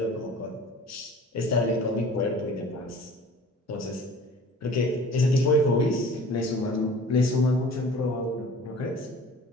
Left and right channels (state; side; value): normal; both; correlation 0.45